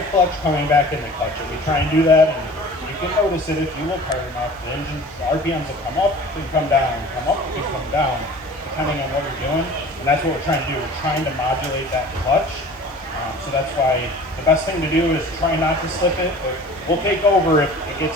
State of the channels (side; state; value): both; normal; correlation 0.43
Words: clutch, coming back in the clutch. And we try and do that, and you can notice it if you look hard enough. The engine's RPMs will come up and come down, come up and come down, depending on what you're doing. And that's what we're trying to do. We're trying to modulate that clutch. So that's why the best thing to do is try not to slip it. But we'll take over if it gets